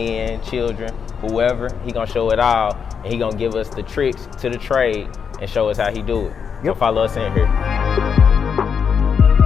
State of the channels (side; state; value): right; quieter; 6.7 dB